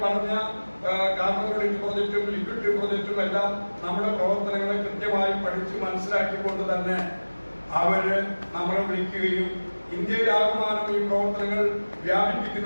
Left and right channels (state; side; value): inverted; both; correlation -1.00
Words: പറഞ്ഞ കാർബൺ ക്രെഡിറ്റ് പ്രോജക്റ്റും ലിക്വിഡ് പ്രോജക്റ്റും എല്ലാം നമ്മുടെ പ്രവർത്തനങ്ങളെ കൃത്യമായി പഠിച്ച് മനസ്സിലാക്കിക്കൊണ്ട് തന്നെ അവര് നമ്മളെ വിളിക്കുകയും ഇന്ത്യയിലാകമാനം ഈ പ്രവർത്തനങ്ങൾ